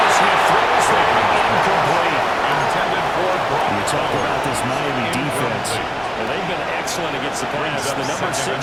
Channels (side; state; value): both; identical; correlation 1.00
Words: he throws that incomplete. Intended for Brock. You talk about this Miami defense. Well, they've been excellent against the pass. The number 6